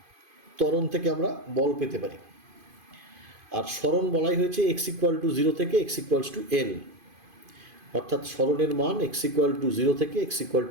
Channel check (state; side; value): late; left; 2.5 ms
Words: ত্বরণ থেকে আমরা বল পেতে পারি, আর সরণ বলাই হয়েছে এক্স ইকুয়াল টু জিরো থেকে এক্স ইকুয়ালস টু এল, অর্থাৎ সরণের মান এক্স ইকুয়াল টু জিরো থেকে এক্স ইকুয়াল